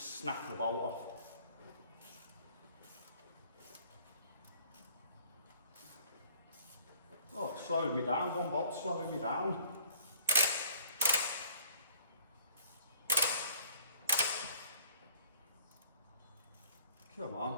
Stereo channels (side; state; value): both; inverted; correlation -0.55